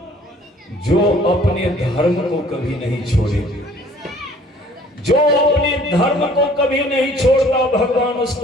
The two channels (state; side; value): normal; both; correlation 0.55